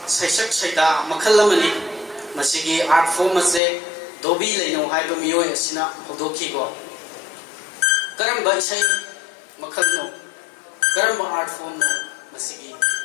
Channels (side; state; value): right; drops out; at 3.6 s